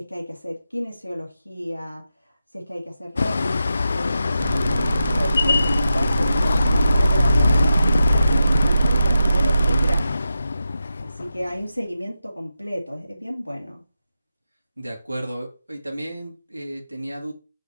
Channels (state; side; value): inverted; both; correlation -0.89